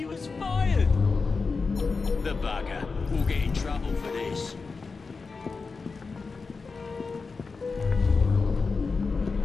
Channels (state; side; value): quieter; right; 4.5 dB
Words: was fired. The bugger will get in trouble for this.